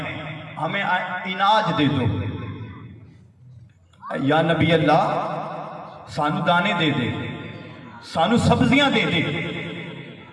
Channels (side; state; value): both; identical; correlation 1.00